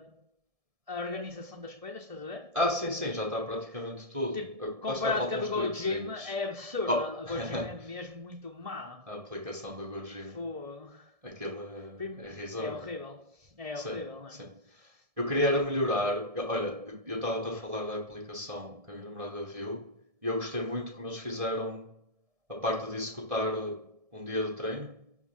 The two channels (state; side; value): late; left; 1.7 ms